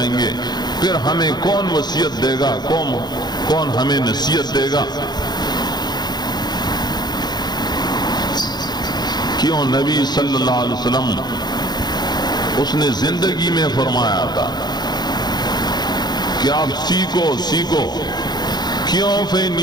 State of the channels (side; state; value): right; late; 0.20 ms